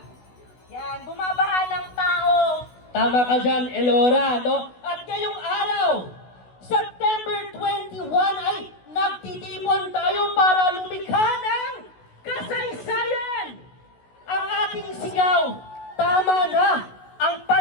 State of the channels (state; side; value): late; right; 16 ms